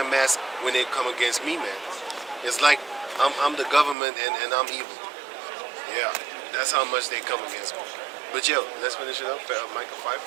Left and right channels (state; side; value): drops out; left; at 4.0 s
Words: mask when they come against me, man. It's like I'm the government and I'm evil. Yeah, that's how much they come against me. But yo, let's finish it up. Micah